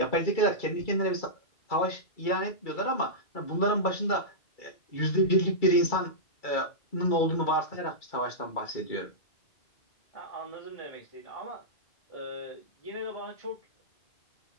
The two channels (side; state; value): right; late; 2.3 ms